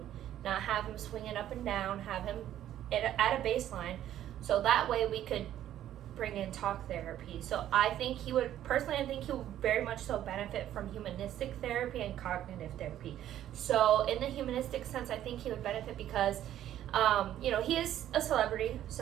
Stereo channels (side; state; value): left; quieter; 11.9 dB